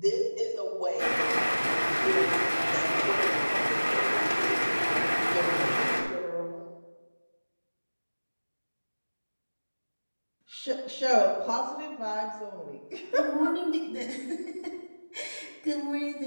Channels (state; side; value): inverted; both; correlation -1.00